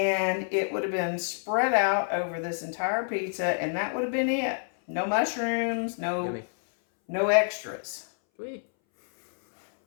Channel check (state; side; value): silent; right; 60 dB below the other